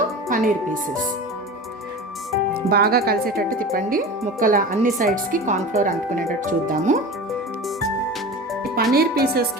paneer pieces. బాగా కలిసేటట్టు తిప్పండి. ముక్కల అన్ని సైడ్స్కి కార్న్ఫ్లోర్ అంటుకునేటట్టు చూద్దాము. ఈ పన్నీర్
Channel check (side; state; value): both; normal; correlation 0.32